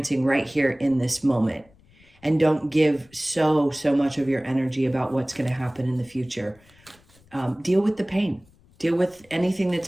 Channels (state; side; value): noise; left; rumble, 29 dB below the sound